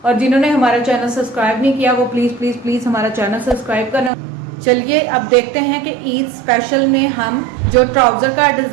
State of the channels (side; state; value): left; drops out; at 4.1 s